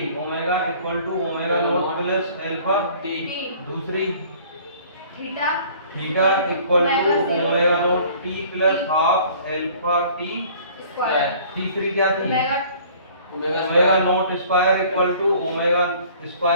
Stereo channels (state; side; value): inverted; both; correlation -0.52